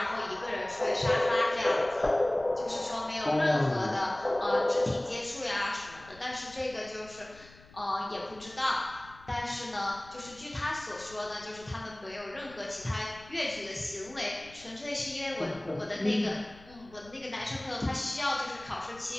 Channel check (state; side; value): noise; left; rumble, 22 dB below the sound